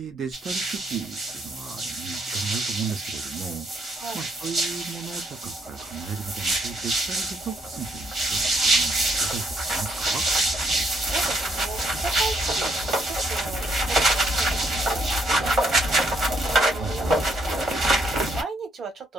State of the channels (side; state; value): both; normal; correlation 0.72